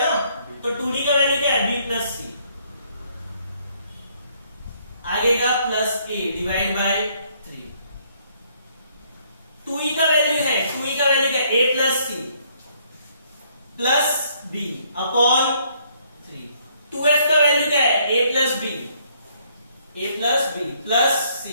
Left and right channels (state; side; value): inverted; both; correlation -0.67